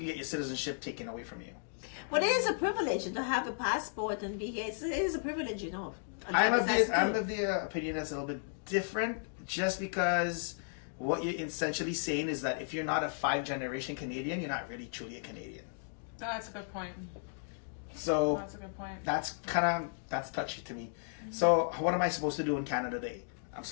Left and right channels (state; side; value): silent; right; digital silence